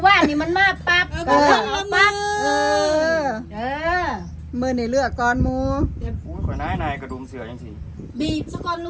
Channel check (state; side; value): identical; both; correlation 1.00